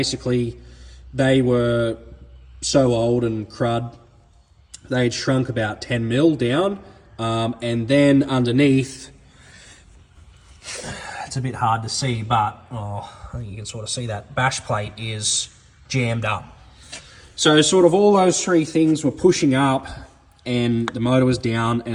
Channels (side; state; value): both; identical; correlation 1.00